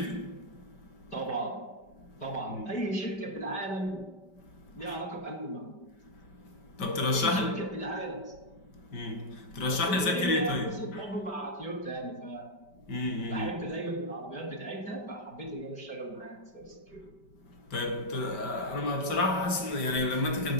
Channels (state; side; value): late; right; 5.1 ms